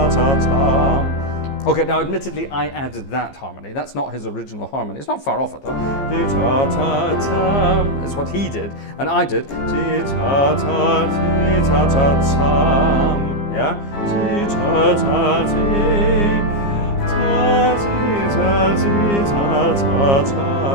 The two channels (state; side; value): late; right; 15 ms